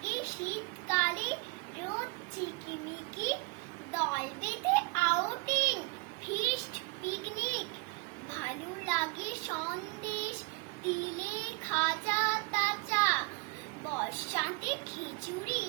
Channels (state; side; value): quieter; left; 27.8 dB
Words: শীতকালে রোদ চিকিমিকি, দল বেঁধে আউটিং ফিস্ট পিকনিক। ভালো লাগে সন্দেশ তিলে খাজা তাজা, বর্ষাতে খিচুড়ি